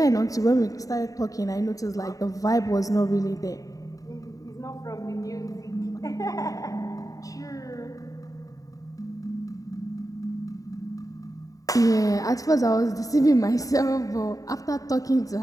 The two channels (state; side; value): late; right; 0.17 ms